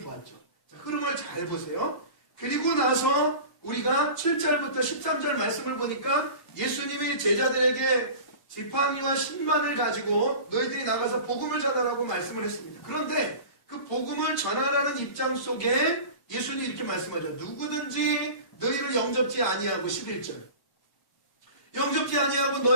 자, 흐름을 잘 보세요. 그리고 나서 우리가 7절부터 13절 말씀을 보니까 예수님이 제자들에게 지팡이와 신만을 가지고 너희들이 나가서 복음을 전하라고 말씀을 했습니다. 그런데 그 복음을 전하라는 입장 속에 예수님이 이렇게 말씀하죠. 누구든지 너희를 영접지 아니하고 11절 영접지 아니하고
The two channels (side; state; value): right; late; 1.1 ms